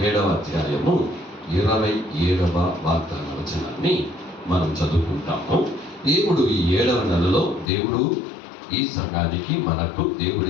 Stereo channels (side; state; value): right; drops out; at 7.7 s